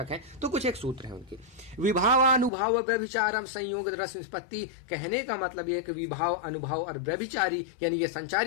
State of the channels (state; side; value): drops out; right; at 2.5 s